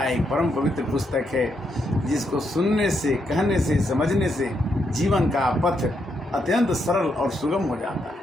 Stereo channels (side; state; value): both; normal; correlation 0.79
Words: एक परम पवित्र पुस्तक है जिसको सुनने से, कहने से, समझने से जीवन का पथ अत्यंत सरल और सुगम हो जाता है।